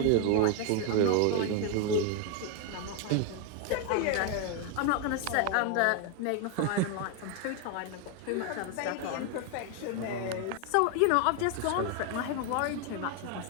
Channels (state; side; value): different; both; correlation 0.01